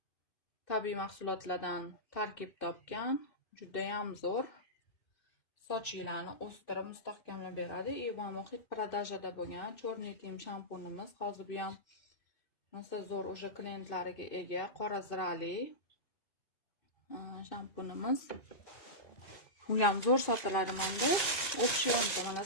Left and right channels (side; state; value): right; late; 2.6 ms